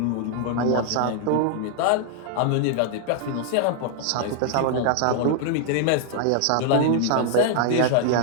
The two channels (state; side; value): different; both; correlation 0.00